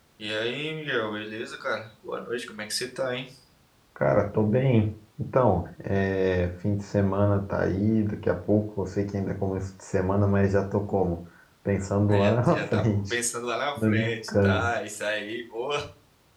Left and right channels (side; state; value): both; identical; correlation 1.00